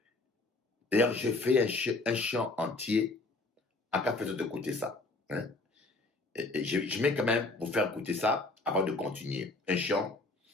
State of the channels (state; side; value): quieter; right; 3.2 dB